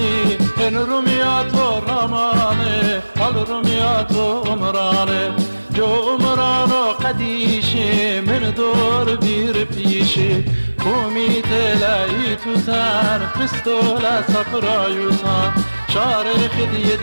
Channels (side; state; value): both; inverted; correlation -1.00